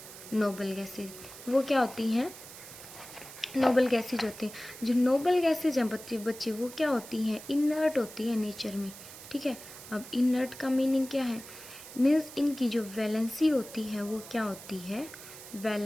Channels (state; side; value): noise; right; hiss, 15 dB below the sound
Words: नोबल गैसेज। वो क्या होती हैं, नोबल गैसेज होती हैं। जो नोबल गैसेज हैं बच्चे वो क्या होती हैं, इनर्ट होती है नेचर में, ठीक है। अब इनर्ट का मीनिंग क्या है, मीन्स इनकी जो वैलेंसी होती है वो क्या होती है,